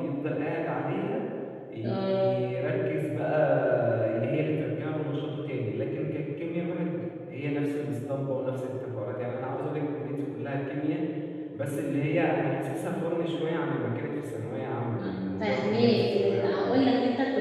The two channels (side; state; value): both; identical; correlation 1.00